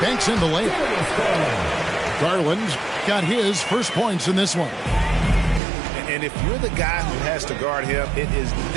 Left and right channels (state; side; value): drops out; left; at 5.6 s